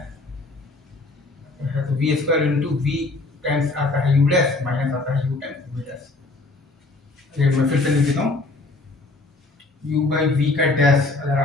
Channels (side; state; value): right; quieter; 3.2 dB